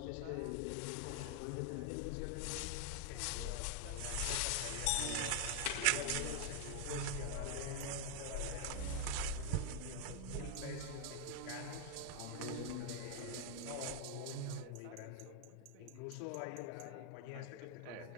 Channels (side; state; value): both; different; correlation 0.00